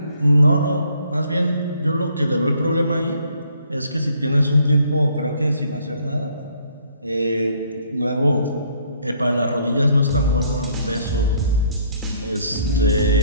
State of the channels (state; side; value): inverted; both; correlation -0.64